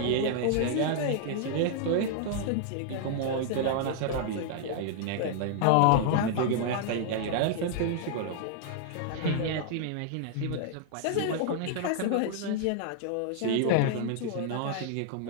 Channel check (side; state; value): both; different; correlation -0.01